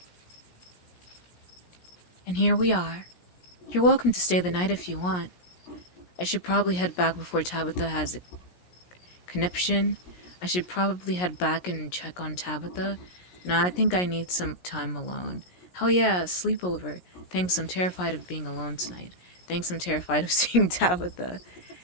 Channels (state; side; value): late; right; 17 ms